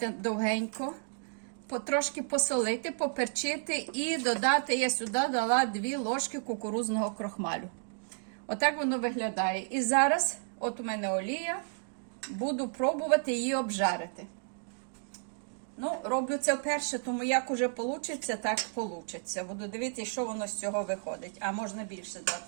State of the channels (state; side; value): silent; left; 56 dB below the other